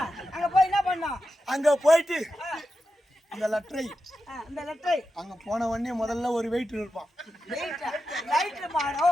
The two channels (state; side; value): normal; both; correlation 0.90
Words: அங்க போய் என்ன பண்ணோம்? அங்க போயிட்டு இந்த லெட்டரை அங்க போன உடனே முதல்ல ஒரு வெயிட் இருப்பான்.